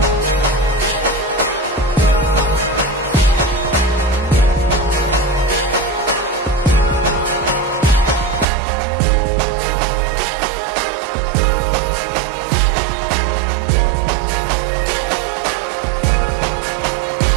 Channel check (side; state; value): left; drops out; at 8.5 s